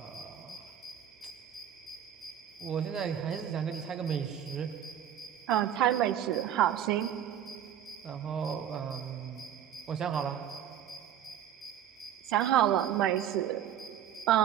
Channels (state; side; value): quieter; left; 10.0 dB